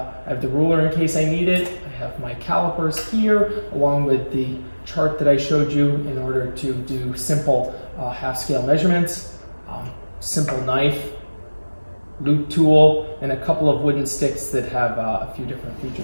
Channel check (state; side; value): inverted; both; correlation -1.00